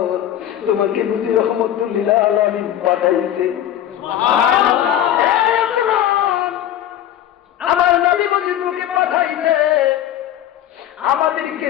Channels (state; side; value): quieter; right; 11.5 dB